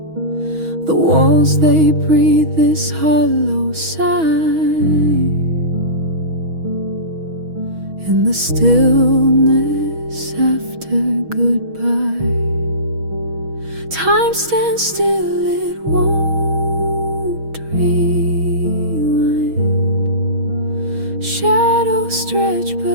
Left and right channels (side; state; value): left; late; 6.3 ms